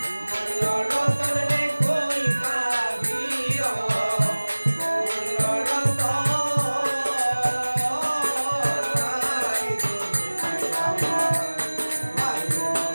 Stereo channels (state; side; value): inverted; both; correlation -1.00